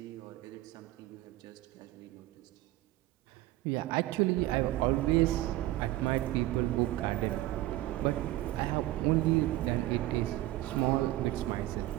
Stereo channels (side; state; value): left; quieter; 16.5 dB